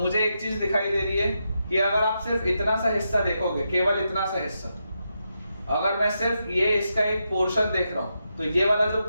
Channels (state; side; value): inverted; both; correlation -0.85